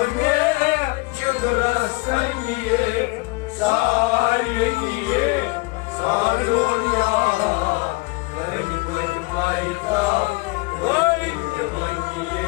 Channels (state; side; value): quieter; right; 25.6 dB